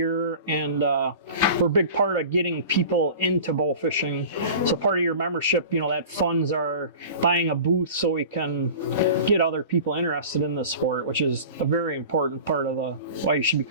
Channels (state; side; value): inverted; both; correlation -0.38